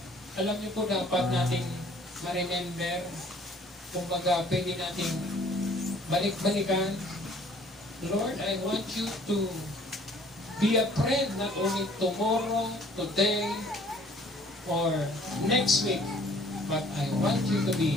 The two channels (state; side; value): normal; both; correlation 0.56